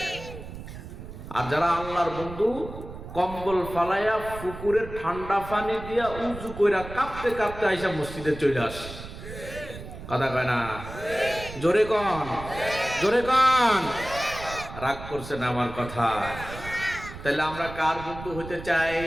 আর যারা আল্লাহর বন্ধু, কম্বল ফালাইয়া পুকুরের ঠান্ডা পানি দিয়া উজু কইরা কাঁপতে কাঁপতে আইসা মসজিদে চলে আসে, কথা কয় না? জোরে কন, জোরে কন। রাগ করছেন আমার কথা? তাহলে আমরা কার বন্ধু হতে চাই?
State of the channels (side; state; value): right; noise; rumble, 12 dB below the sound